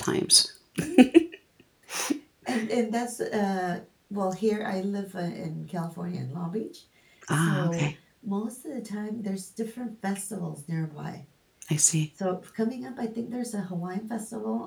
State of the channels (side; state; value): both; identical; correlation 1.00